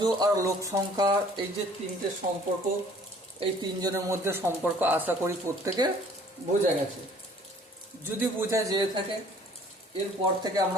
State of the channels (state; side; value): normal; both; correlation 0.54